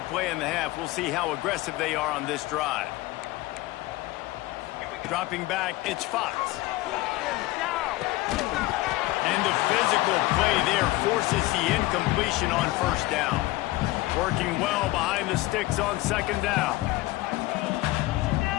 in the half. We'll see how aggressive they are on this drive. Dropping back, it's Fox. And the physical play there forces the incompletion on 1st down. Working well behind the sticks on 2nd down.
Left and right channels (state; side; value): quieter; right; 18.9 dB